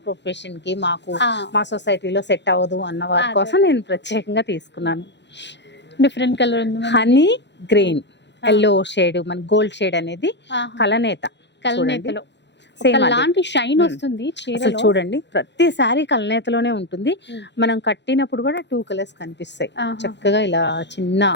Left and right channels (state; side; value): late; right; 0.51 ms